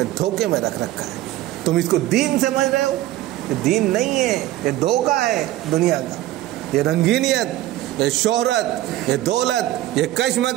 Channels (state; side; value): quieter; left; 15.2 dB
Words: دھوکے میں رکھ رکھا ہے، تم اس کو دین سمجھ رہے ہو، یہ دین نہیں ہے، یہ دھوکہ ہے دنیا کا، یہ رنگینیت، یہ شہرت، یہ دولت، یہ